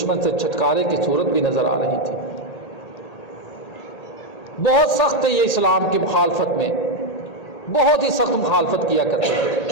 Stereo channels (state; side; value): late; right; 1.8 ms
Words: سے چھٹکارے کی صورت بھی نظر آ رہی تھی۔ بہت سخت ہے یہ اسلام کی مخالفت میں، بہت ہی سخت مخالفت کیا کرتے